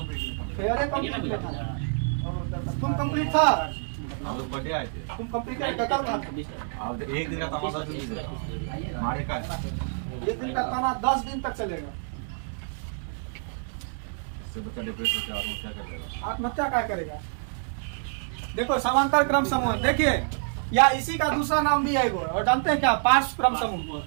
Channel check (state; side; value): silent; left; digital silence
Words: फेयर है कंप्लीट था। तुम कंप्लीट था, हम लोग पढ़े आए थे। तुम कंप्लीट कर कब था? अब एक दिन का तमाशा शुरू से हमारे का है। एक दिन का ताना 10 दिन तक चलेगा। इससे बच्चा डिप्रेस होकर आत्महत्या कर देगा। आत्महत्या क्या करेगा? देखो समांतर क्रम समूह देखिए, या इसी का दूसरा नाम भी है वो, और जानते हैं क्या? पार्श्व क्रम